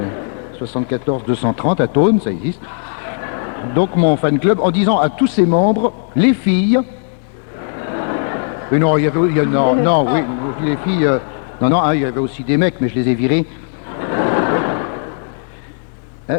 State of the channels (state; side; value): silent; right; digital silence